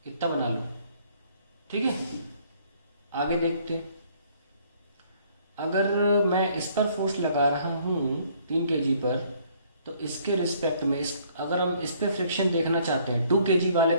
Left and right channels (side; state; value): both; inverted; correlation -0.62